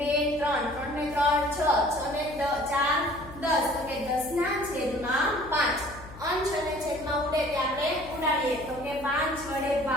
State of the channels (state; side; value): noise; left; hum, 17 dB below the sound